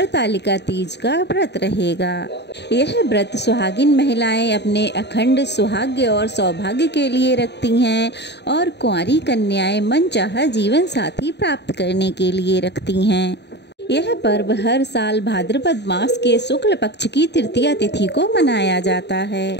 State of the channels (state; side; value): late; right; 0.50 ms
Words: तीज का व्रत रहेगा। यह व्रत सुहागिन महिलाएं अपने अखंड सुहाग्य और सौभाग्य के लिए रखती हैं और कुंवारी कन्याएं मनचाहा जीवन साथी प्राप्त करने के लिए रखती हैं। यह पर्व हर साल भाद्रपद मास के शुक्ल पक्ष की तृतीया तिथि को मनाया जाता